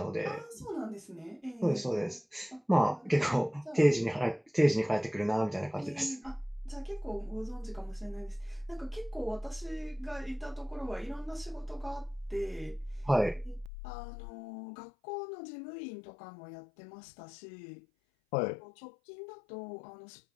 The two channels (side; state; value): right; drops out; at 13.7 s